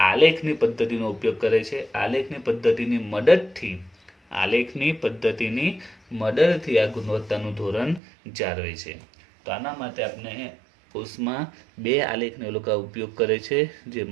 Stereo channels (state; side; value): drops out; left; at 8.0 s